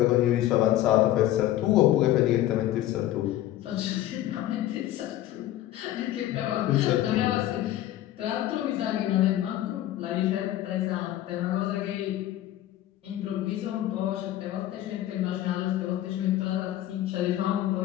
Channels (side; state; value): right; quieter; 13.7 dB